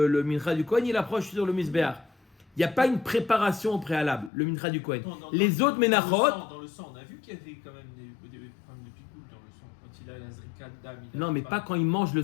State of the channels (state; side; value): drops out; right; at 4.3 s